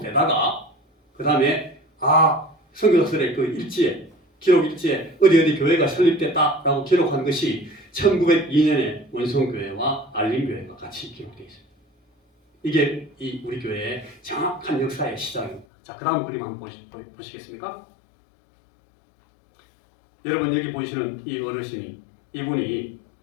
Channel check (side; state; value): right; drops out; at 15.7 s